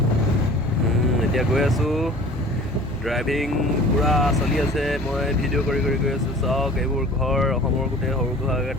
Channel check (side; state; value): both; normal; correlation 0.44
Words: এতিয়া গৈ আছোঁ। ড্ৰাইভিং পূৰা চলি আছে। মই ভিডিঅ' কৰি গৈ আছোঁ। চাওক এইবোৰ ঘৰ অসমৰ গোটেই সৰু সুৰাকৈ